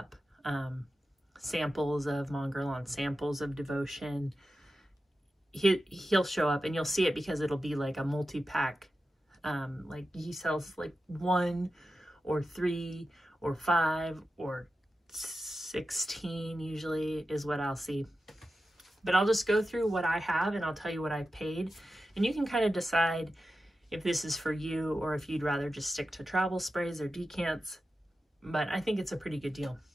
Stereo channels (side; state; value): both; normal; correlation 0.92